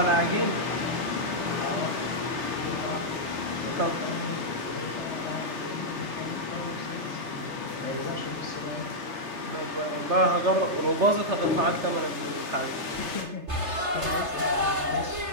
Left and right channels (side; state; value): left; late; 3.3 ms